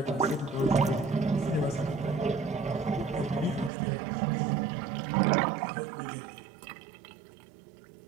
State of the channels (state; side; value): drops out; left; at 3.7 s